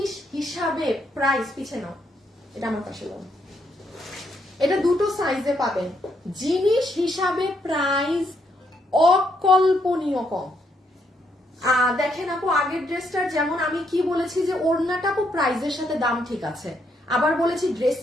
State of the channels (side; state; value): both; normal; correlation 0.75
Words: হিসাবে প্রাইস, পিছে নাও, এটা আমার পাশে দাও। এটা দুটো সাইজে পাবেন, জিনিস হিসাবে প্রাইস অকল্পনীয় কম। দেখেন আপু, আগের ড্রেসটার যেমন আমি কি বলেছি যে ওড়নাটা আপু প্রাইসের সাথে দাম ঠিক আছে, আবার বলেছি